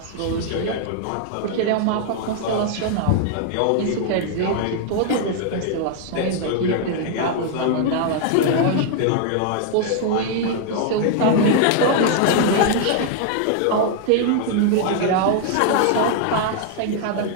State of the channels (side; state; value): both; different; correlation 0.00